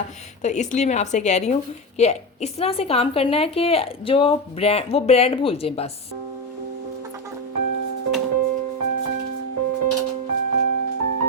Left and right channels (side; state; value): both; normal; correlation 0.16